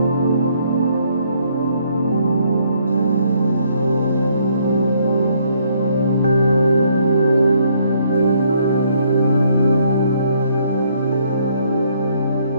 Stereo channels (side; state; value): both; inverted; correlation -0.68